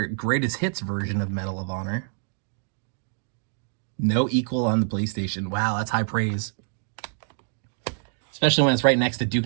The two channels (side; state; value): left; silent; digital silence